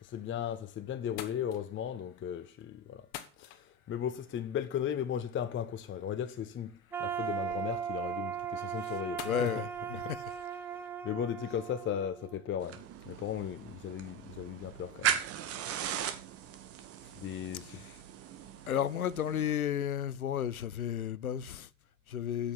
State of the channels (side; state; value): right; quieter; 3.4 dB